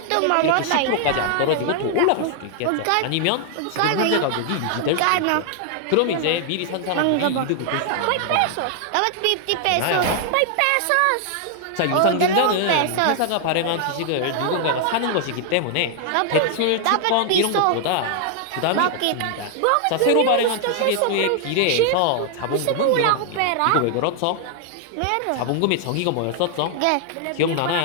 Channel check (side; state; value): both; different; correlation 0.00